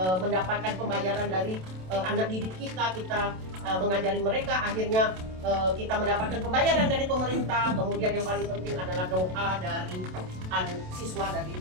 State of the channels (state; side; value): late; left; 27 ms